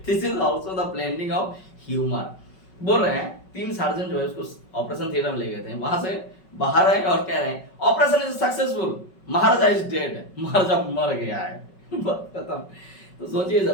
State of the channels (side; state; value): right; late; 5.3 ms